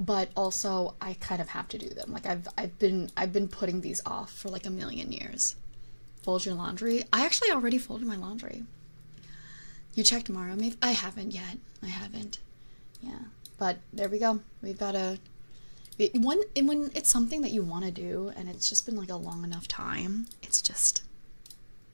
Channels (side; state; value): both; inverted; correlation -1.00